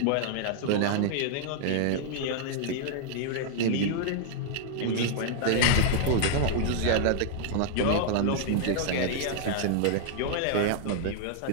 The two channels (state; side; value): different; both; correlation -0.01